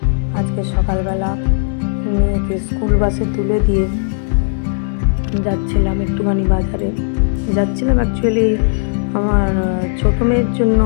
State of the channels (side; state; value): right; silent; digital silence